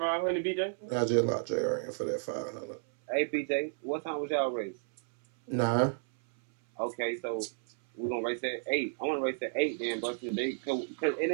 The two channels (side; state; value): left; silent; 56 dB below the other